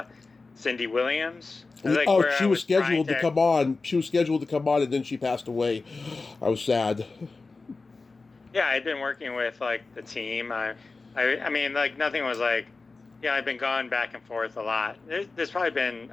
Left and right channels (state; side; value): quieter; right; 3.9 dB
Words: Cindy Williams. She was scheduled to come on. She was scheduled to come on, and then she passed away. I was sad. Yeah, I'd been working with like the team. I mean, like nothing was like, I've been going back and forth a lot. There's probably been